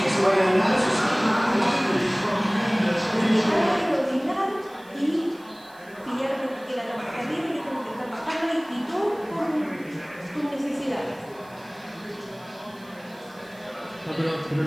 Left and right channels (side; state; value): right; noise; hiss, 27 dB below the sound